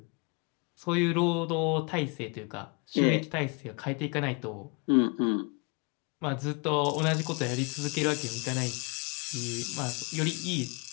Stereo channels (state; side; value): quieter; right; 32.2 dB